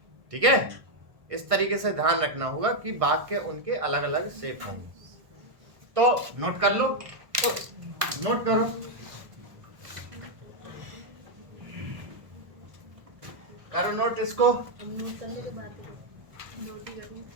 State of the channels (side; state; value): left; late; 1.5 ms